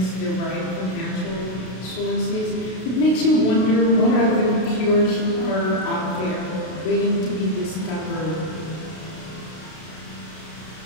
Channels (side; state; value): right; late; 32 ms